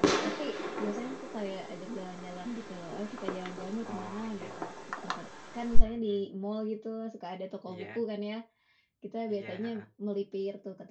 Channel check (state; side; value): identical; both; correlation 1.00